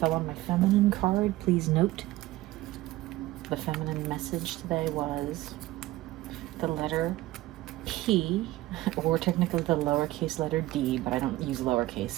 on my feminine card. Please note, the feminine message today was the letter P, or technically the lowercase letter D, but I don't use lowercase,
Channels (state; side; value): quieter; left; 17.2 dB